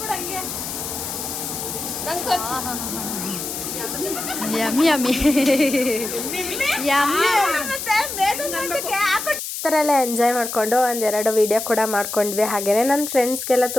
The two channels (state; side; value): noise; left; hiss, 6 dB below the sound